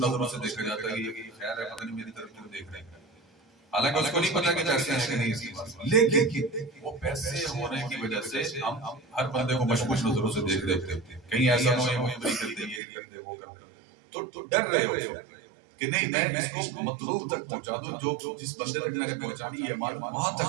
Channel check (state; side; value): drops out; left; at 12.8 s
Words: سے دیکھا جاتا ہے کہ یہ خیر ہے، پتہ نہیں میری طرف کیوں دیکھ رہے ہیں. حالانکہ اس کو نہیں پتا کہ پیسے ہیں کہ نہیں اس کے پاس، لیکن وہ پیسے ہونے کی وجہ سے ہم ہر بندے کو مشکوک نظروں سے دیکھ رہے ہیں. کہیں ایسا نہ ہو یہ مجھے کر دے، یہ کر دے، وہ کر دے. تو ڈر رہے ہو کہ نہیں میں اس کو مطلوب تک پہنچا دوں، جو جس بندے تک میں نے پہنچانی یہ ایمان وہاں